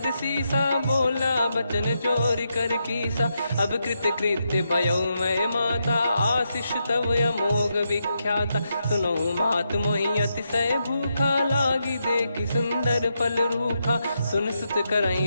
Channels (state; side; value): inverted; both; correlation -0.83